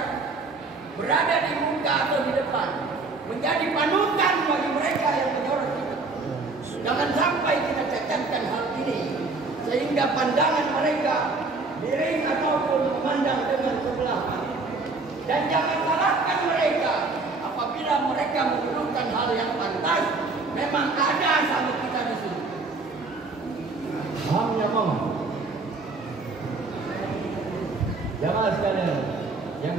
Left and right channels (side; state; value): left; quieter; 3.8 dB